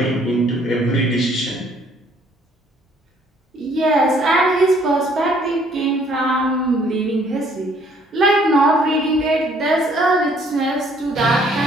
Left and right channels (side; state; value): both; normal; correlation 0.62